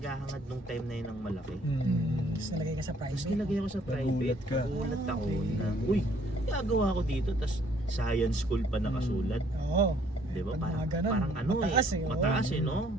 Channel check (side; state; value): both; normal; correlation 0.63